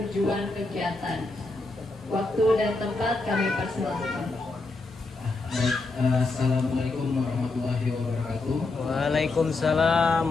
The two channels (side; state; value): right; quieter; 3.4 dB